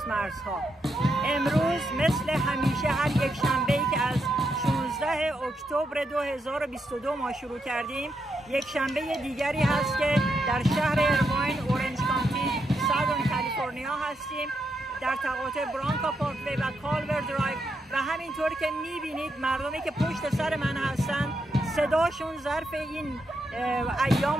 مرزها. امروز مثل همیشه هر یک شنبه‌ای که از 16 اکتبر 2022 ما شروع کردیم، یک شنبه دیگری هست که در شهر ایرواین، اورنج کانتی، سادرن کالیفرنیا هستیم، در تقاطع برانکا پارکوی و کالور درایو و همینطور که میبینید مردمی که پشت سر من هستن صداشون ظرف این ایام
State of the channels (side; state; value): both; normal; correlation 0.82